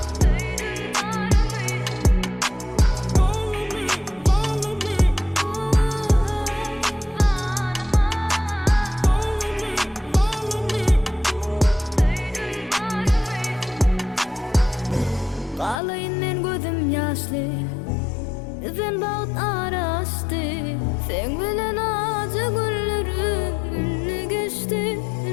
Ağlayın men gözüm yaşlı, sen bağıt araştı. Sen bilen acı günlerim ünlü geçti,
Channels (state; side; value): drops out; right; at 15.8 s